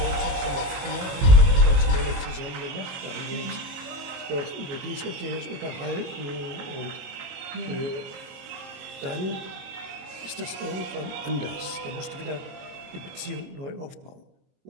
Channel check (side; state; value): left; late; 22 ms